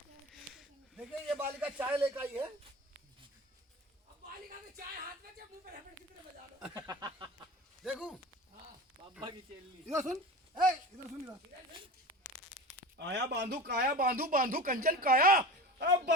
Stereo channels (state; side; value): normal; both; correlation 0.32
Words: देखिए। ये बालिका चाय लेकर आई है। अब बालिका में चाय हाथ में मुंह पे रबड़ की तरह बजा लो। देखूं बाबा की चेली। इधर सुन, ए इधर सुन इधर। आया बांधू काया बांधू बांधू कंचन काया। अब